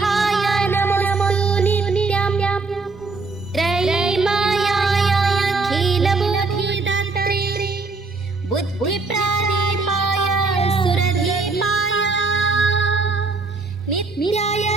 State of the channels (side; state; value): left; quieter; 3.9 dB